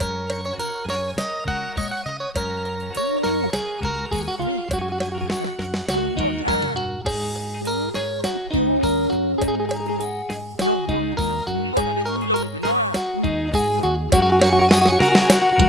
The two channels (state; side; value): normal; both; correlation 0.53